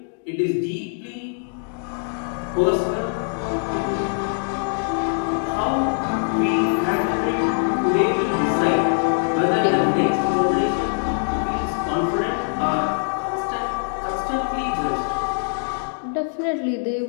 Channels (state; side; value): silent; right; digital silence